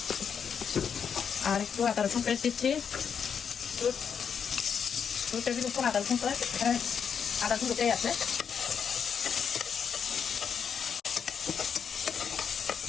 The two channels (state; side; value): quieter; right; 7.1 dB